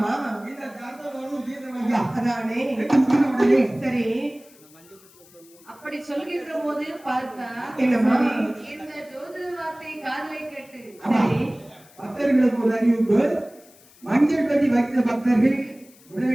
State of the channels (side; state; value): left; noise; hiss, 26 dB below the sound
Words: இந்த தர்மதோஷம் தீர்ந்து ஐயா. அதானே. உடனே சரி. அப்படி சொல்கின்ற போது பார்த்தா என்னம்மா? இந்த ஜோதிட வார்த்தை காதலை கேட்டு சரி. பக்தர்களுக்கு ஒரு அறிவிப்பு. மஞ்சள் பெட்டி வைத்த பக்தர்கள்